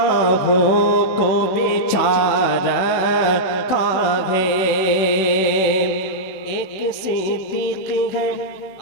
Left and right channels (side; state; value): right; late; 16 ms